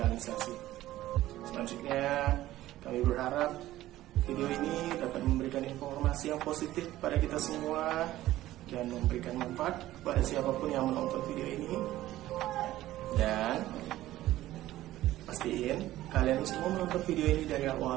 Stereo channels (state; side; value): quieter; left; 15.1 dB